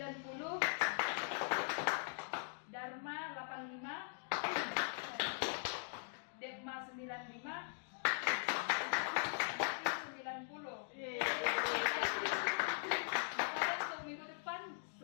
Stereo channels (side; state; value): right; silent; digital silence